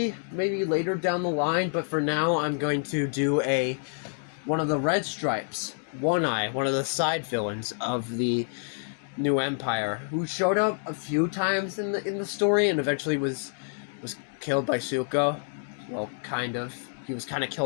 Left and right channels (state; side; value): silent; right; 59 dB below the other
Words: maybe later down the line, but for now I'm going to do one of the Red Stripes, One Eye, one of the side villains of the new Empire, who showed up a few times in the story and eventually was killed by Zuko. Well, kind of. He was kind of